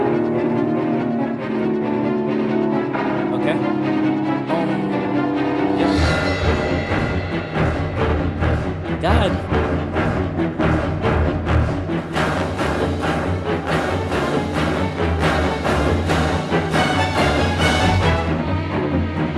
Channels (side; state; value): both; identical; correlation 1.00